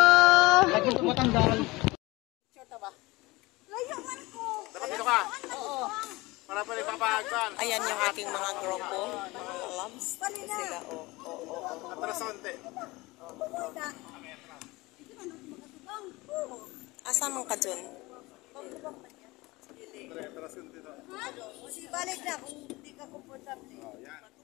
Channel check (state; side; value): quieter; right; 21.8 dB